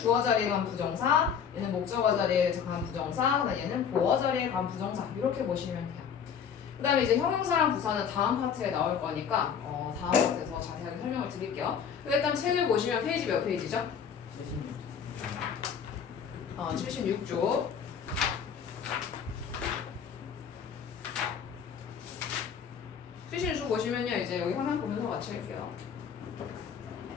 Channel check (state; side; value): quieter; right; 7.4 dB